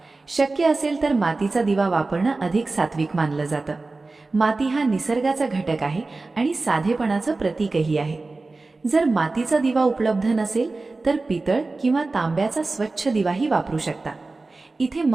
शक्य असेल तर मातीचा दिवा वापरणं अधिक सात्विक मानलं जातं. माती हा निसर्गाचा घटक आहे आणि साधेपणाचं प्रतीकही आहे. जर मातीचा दिवा उपलब्ध नसेल तर पितळ किंवा तांब्याचा स्वच्छ दिवाही वापरू शकता. इथे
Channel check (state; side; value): quieter; left; 3.5 dB